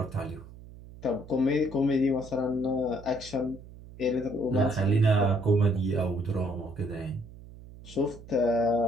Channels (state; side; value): noise; right; hum, 18 dB below the sound